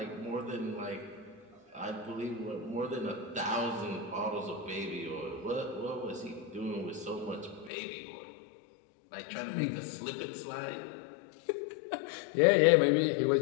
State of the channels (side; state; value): right; drops out; at 7.7 s